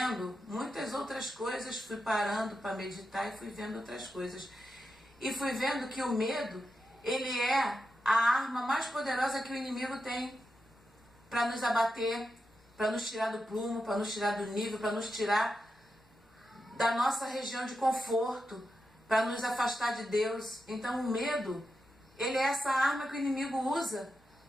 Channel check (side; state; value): both; normal; correlation 0.88